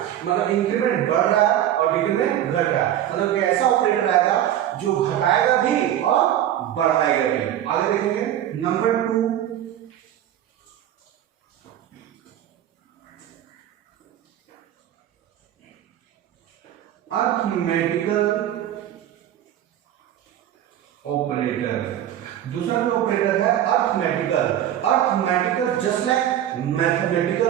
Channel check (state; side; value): quieter; left; 11.5 dB